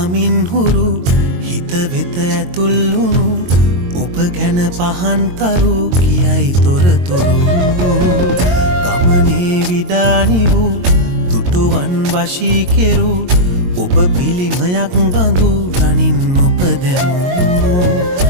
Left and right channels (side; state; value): left; late; 22 ms